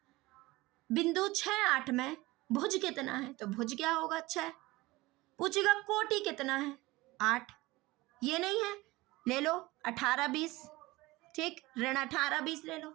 8 में भुज कितना है? तो भुज क्या होगा? 6। पूछेगा कोटि कितना है? 8। ये नहीं है, ले लो 18 20। ठीक, ऋण 18 20 ले लो।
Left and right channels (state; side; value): quieter; left; 20.3 dB